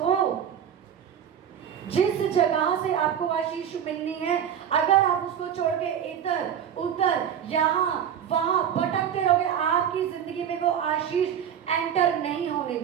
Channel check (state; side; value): quieter; left; 8.9 dB